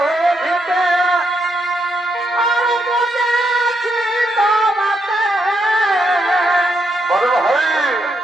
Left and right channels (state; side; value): normal; both; correlation 0.79